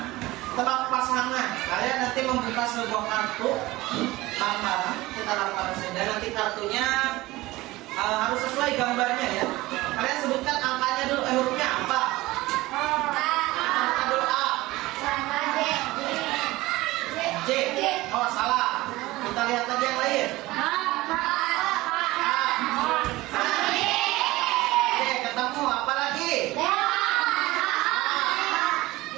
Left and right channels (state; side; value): quieter; left; 19.0 dB